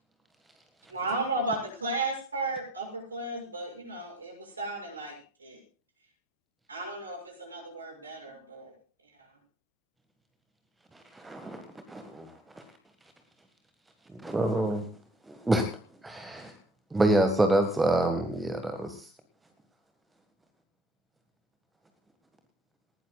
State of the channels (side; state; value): both; normal; correlation 0.55